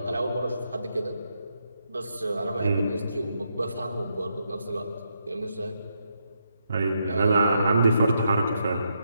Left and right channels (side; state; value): both; inverted; correlation -0.80